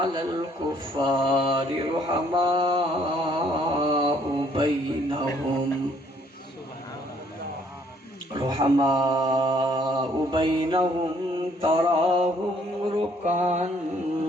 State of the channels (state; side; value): normal; both; correlation 0.64